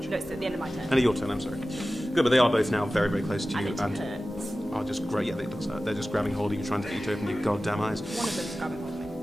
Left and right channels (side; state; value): both; normal; correlation 0.95